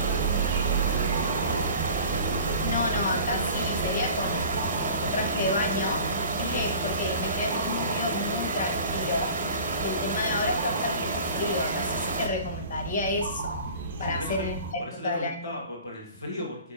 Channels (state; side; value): inverted; both; correlation -0.43